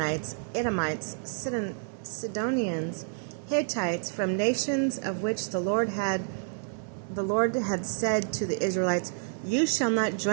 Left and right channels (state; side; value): silent; left; digital silence